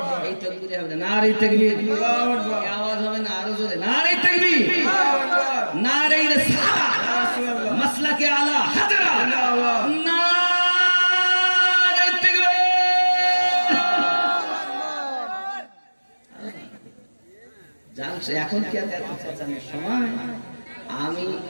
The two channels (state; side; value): inverted; both; correlation -1.00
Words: এই তাকবীরে হবে না, নারী তাকবীর। আল্লাহু আকবার। এই আওয়াজ হবে না, আরো জোরে নারী তাকবীর। আল্লাহু আকবার। নারী রিসালাত, রাসূলুল্লাহ। মাসলাকে আলা হাজরা, জিন্দাবাদ। নারী তাকবীর। জানছে এখন কি আর এত চেঁচানোর সময়? আমি